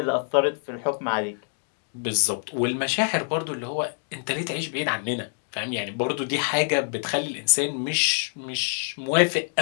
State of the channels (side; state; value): right; silent; 61 dB below the other